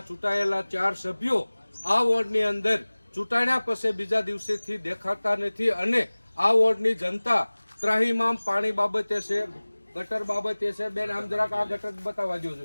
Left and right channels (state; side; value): inverted; both; correlation -1.00